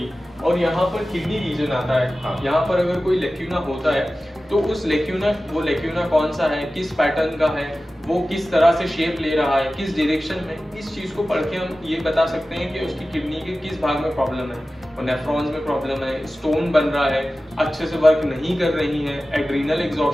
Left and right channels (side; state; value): both; normal; correlation 0.95